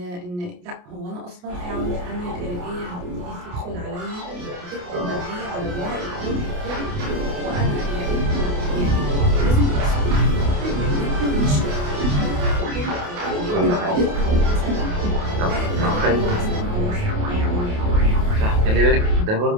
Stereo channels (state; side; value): late; left; 28 ms